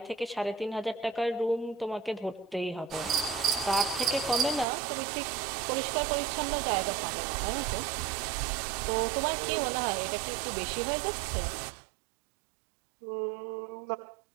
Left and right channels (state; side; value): drops out; left; at 4.7 s